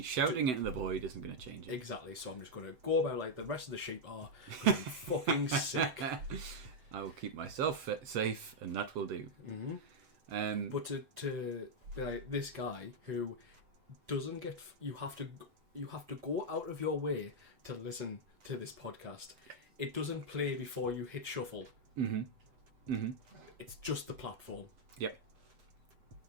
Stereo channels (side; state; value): left; late; 7.9 ms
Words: shouting it in the void isn't going to change it. Exactly. So I'm just going to go about like the rest of the sheep are. 'Cause I'm fucking sick. I will keep myself safe, and that will do. But to be like this guy who doesn't get, you have to go out of your way to listen to this podcast. It doesn't play before you hit shuffle. It's just the platform. Yep.